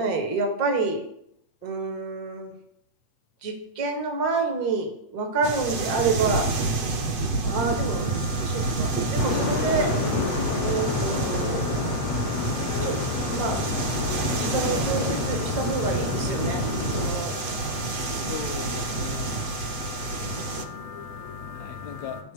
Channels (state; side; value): late; right; 8.0 ms